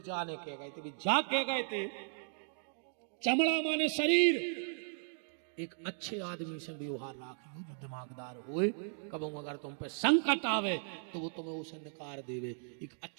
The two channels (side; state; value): left; silent; digital silence